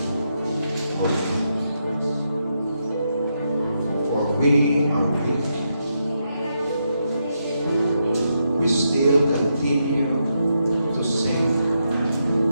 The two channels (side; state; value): both; inverted; correlation -0.82